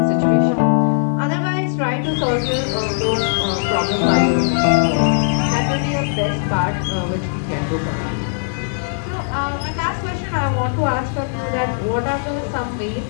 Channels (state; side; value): silent; right; 66 dB below the other